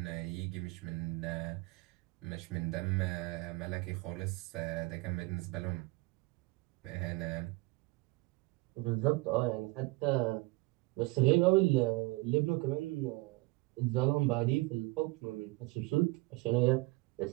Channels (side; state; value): left; quieter; 22.8 dB